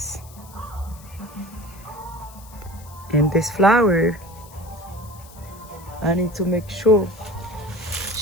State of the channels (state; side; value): noise; left; hiss, 21 dB below the sound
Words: And this flower, I need to make sure